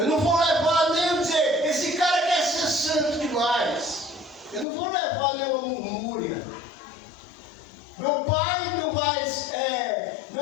não vou levar nem dizer, esse cara quer ser santo demais. Eu não vou levar nenhuma murmúria. Meu pai não vai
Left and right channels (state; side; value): drops out; right; at 4.7 s